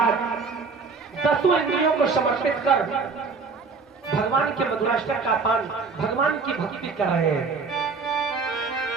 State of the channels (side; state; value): left; quieter; 4.7 dB